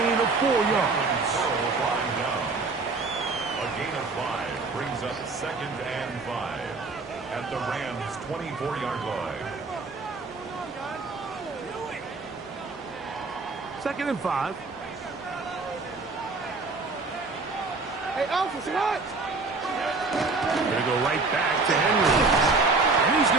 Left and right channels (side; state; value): left; quieter; 3.9 dB